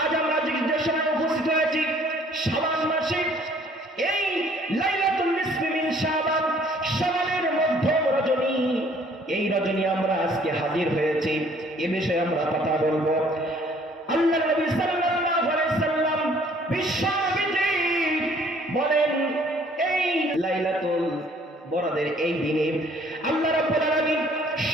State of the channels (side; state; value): both; normal; correlation 0.58